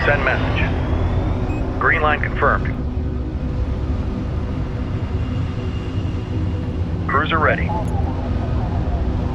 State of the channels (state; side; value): identical; both; correlation 1.00